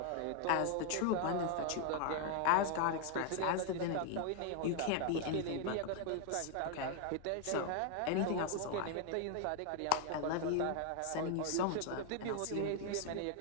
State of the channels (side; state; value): both; different; correlation 0.01